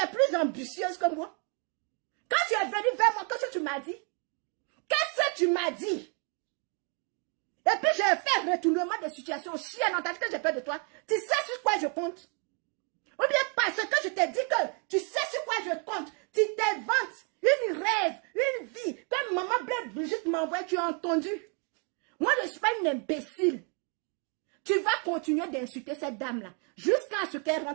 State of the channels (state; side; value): quieter; left; 37.4 dB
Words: plus ambitieuse que moi. Quand tu es venu vers moi, qu'est-ce que tu m'as dit? que tu m'as dit. Et puis je fais retournement de situation. Chienne, on t'a dit que j'ai peur de toi. Tu sais sur quoi je compte? Ou bien parce que je t'ai dit que tu sais sur quoi je compte. Tu t'inventes une rêve, une vie. Comme maman Blaise Brigitte m'envoie, tu as entendu? Moi, je ne suis pas une imbécile. Tu vas continuer d'insulter cette dame-là jusqu'à ce qu'elle